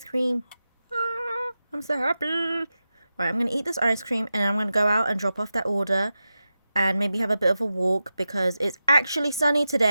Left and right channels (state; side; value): inverted; both; correlation -0.92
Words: cream. Ah, I'm so happy. Right, I'm going to eat this ice cream, and I'm going to go out and drop off that order and maybe have a bit of a walk because it's actually sunny